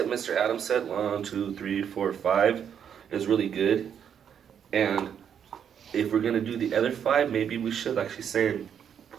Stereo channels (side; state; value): left; quieter; 8.3 dB